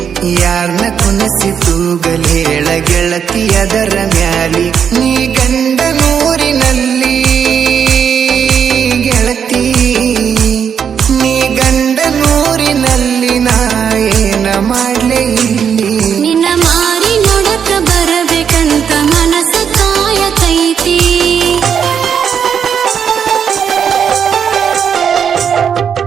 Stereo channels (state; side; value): quieter; left; 7.6 dB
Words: ಯಾರ್ನ ಕುನಸಿ ತೂಗಲ್ ಹೇಳ ಗೆಳತಿ ಅದರ ಮ್ಯಾಲಿ ನೀ ಗಂಡ ನೂರಿನಲ್ಲಿ ಗೆಳತಿ ನೀ ಗಂಡ ನೂರಿನಲ್ಲಿ ನಾ ಏನ ಮಾಡ್ಲೆ ಇಲ್ಲಿ ನಿನ್ನ ಮಾರಿ ನೋಡಕ ಬರಬೇಕಂತ ಮನಸ ಕಾಯತೈತಿ